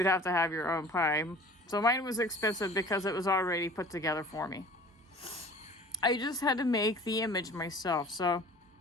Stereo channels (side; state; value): both; normal; correlation 0.45